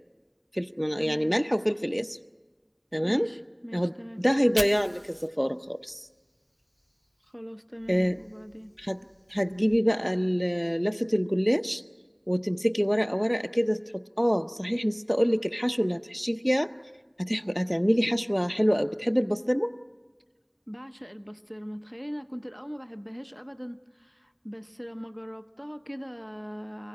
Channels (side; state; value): both; identical; correlation 1.00